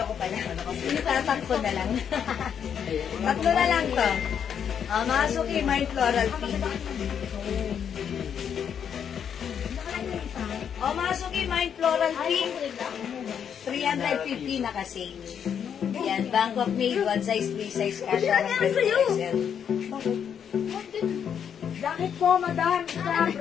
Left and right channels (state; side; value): quieter; right; 8.1 dB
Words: pala. Itatak ko na lang. Tatlo na lang to. Mga suki, mine Floral Pink. O, mga suki, mine Floral Pink. 350 na kasi. Yan, Bangkok made, one size, three size, kasha ng 20%. Jacket po, madam. Isa